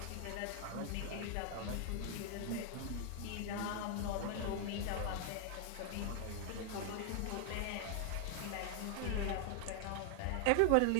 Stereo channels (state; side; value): different; both; correlation 0.00